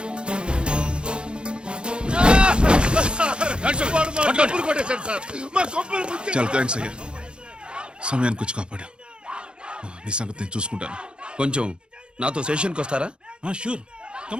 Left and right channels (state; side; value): late; left; 0.053 ms